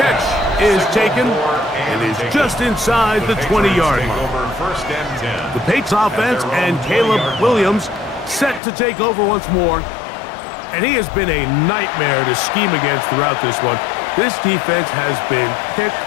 is taken and is just inside the 20-yard line. The Patriots offense and Caleb Williams set to take over once more. And he has been a nightmare to scheme against throughout this one. This defense has been picked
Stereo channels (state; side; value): drops out; right; at 8.6 s